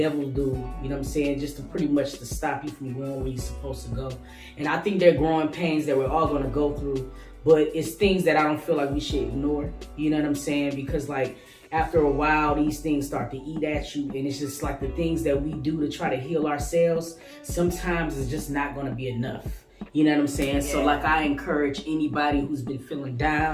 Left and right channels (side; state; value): both; identical; correlation 1.00